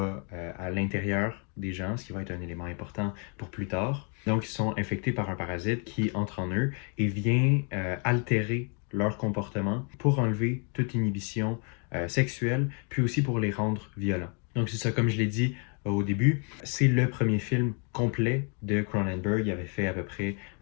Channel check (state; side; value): quieter; right; 38.5 dB